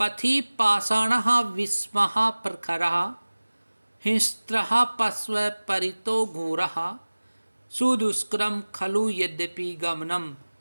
पथि पाषाण विस्मः प्रखर हिंस्त्र पश्व परितो घोरः सुदुष्करम खलु यद्यपि गमनम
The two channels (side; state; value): both; inverted; correlation -1.00